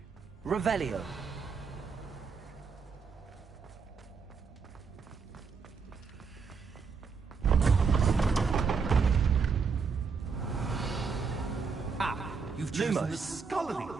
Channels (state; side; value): quieter; left; 5.3 dB